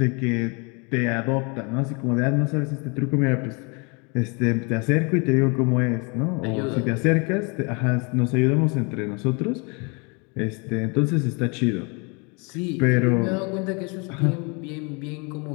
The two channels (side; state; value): right; quieter; 32.0 dB